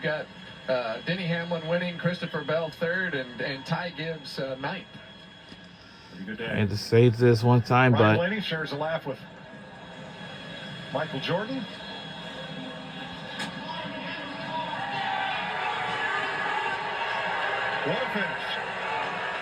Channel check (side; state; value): both; identical; correlation 1.00